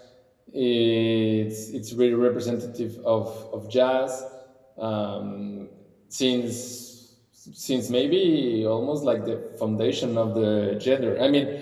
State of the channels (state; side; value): identical; both; correlation 1.00